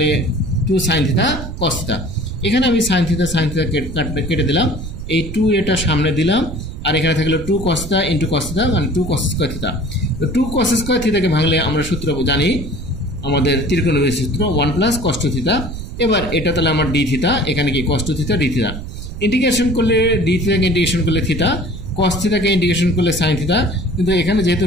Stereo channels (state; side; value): noise; right; rumble, 9 dB below the sound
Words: 2 সাইন থিতা কস থিতা। এখানে আমি সাইন থিতা কেটে দিলাম, এই 2a সামনে দিলাম, আর এখানে থাকলো 2 কস থিতা ইন্টু কস থিতা মানে 2 কস স্কোয়ার থিতা। তো 2 কস স্কোয়ার থিতাকে ভাঙলে আমরা সূত্র জানি, আমাদের ত্রিকোণমিতির সূত্র 1 প্লাস কস 2 থিতা। এবার এটা তাহলে আমার ডি থিতা, এখানে কি কস 2 থিতা ডি থিতা। ইন্টিগ্রেশন করলে ডি থিতাকে ইন্টিগ্রেশন করলে থিতা, কস থিতাকে ইন্টিগ্রেশন করলে সাইন থিতা, কিন্তু এখানে যেহেতু